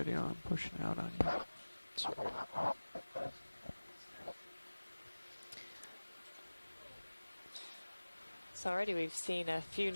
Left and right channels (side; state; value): both; inverted; correlation -1.00